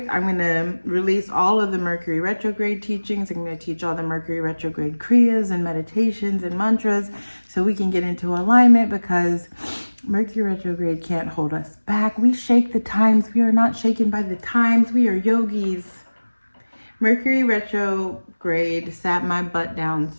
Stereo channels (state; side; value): inverted; both; correlation -1.00